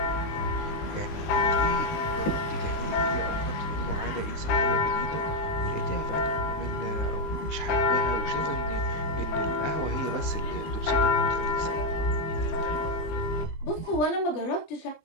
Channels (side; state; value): right; late; 20 ms